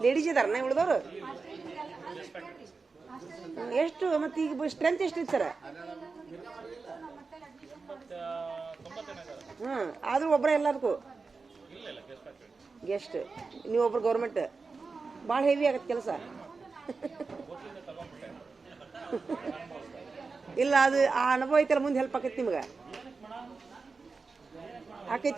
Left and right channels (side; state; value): left; quieter; 4.4 dB